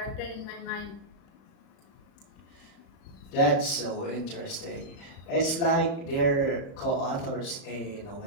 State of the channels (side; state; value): right; late; 35 ms